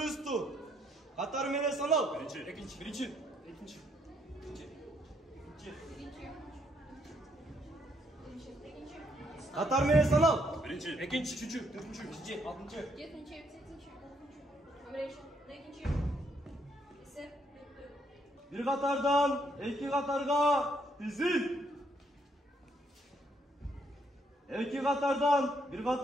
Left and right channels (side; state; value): both; normal; correlation 0.72